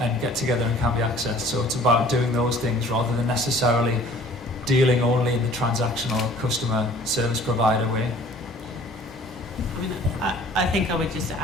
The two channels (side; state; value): both; normal; correlation 0.51